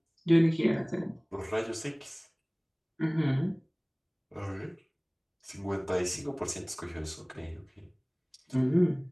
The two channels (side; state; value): both; identical; correlation 1.00